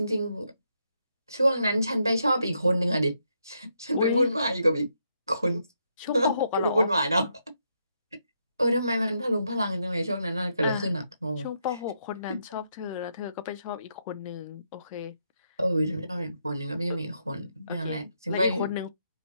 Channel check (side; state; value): both; inverted; correlation -0.78